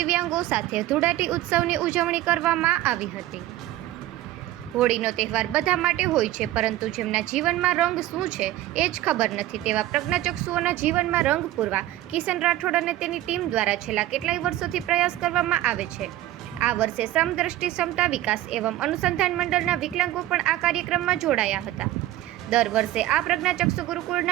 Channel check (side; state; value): left; quieter; 14.9 dB